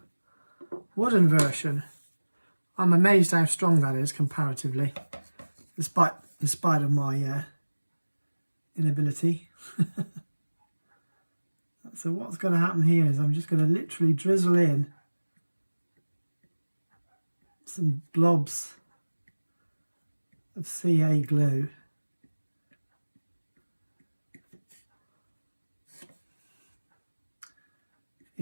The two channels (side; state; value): both; inverted; correlation -1.00